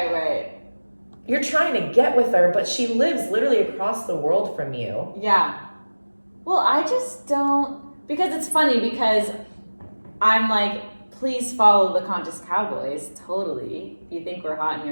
You're trying to get with her, but she lives literally across the world from you. Yeah. Well, I just don't, because it's funny because I'm like, please follow the Conscious Cowboys. Totally. If you think we're hot and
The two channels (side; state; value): both; inverted; correlation -1.00